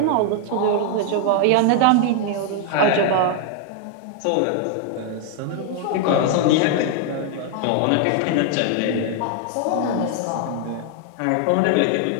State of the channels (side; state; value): both; different; correlation 0.00